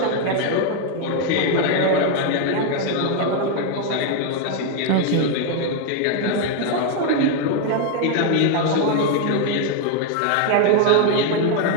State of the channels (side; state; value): both; different; correlation 0.01